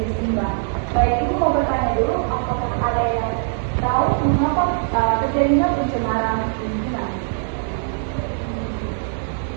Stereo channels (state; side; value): silent; left; digital silence